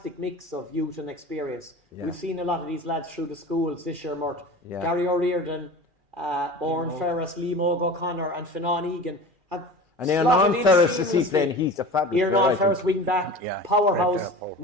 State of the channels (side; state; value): left; late; 2.4 ms